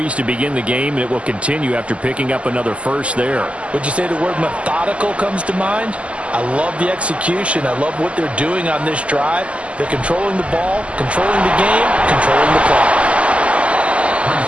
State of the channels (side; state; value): left; late; 0.059 ms